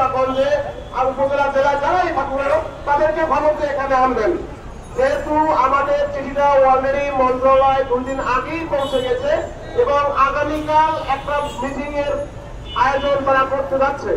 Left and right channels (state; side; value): identical; both; correlation 1.00